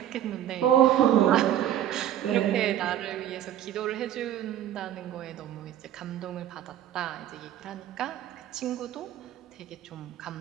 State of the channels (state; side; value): quieter; left; 11.4 dB